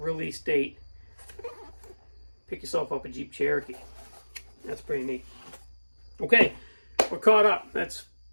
date. Pick yourself up a Jeep Cherokee. That's pretty neat. Okay, we're caught up. That's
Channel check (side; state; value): both; inverted; correlation -1.00